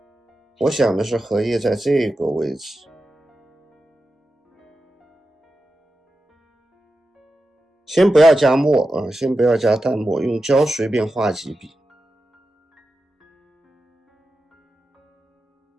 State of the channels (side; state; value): both; normal; correlation 0.91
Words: 我想的是荷叶在这个位置，先不要加墨先不要加淡墨，用胶随便画几笔。